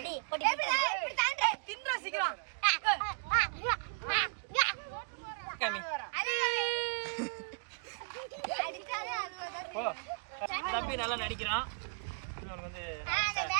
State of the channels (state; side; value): quieter; left; 38.7 dB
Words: தம்பி நல்லா நடிக்கிறான்.